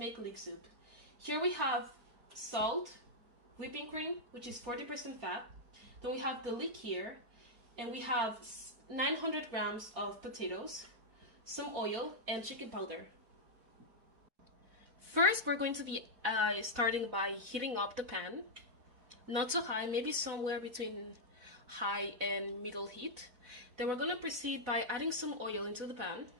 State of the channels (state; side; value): late; left; 4.1 ms